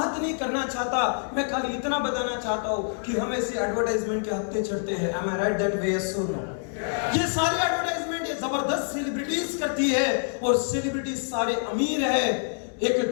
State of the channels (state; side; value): silent; right; digital silence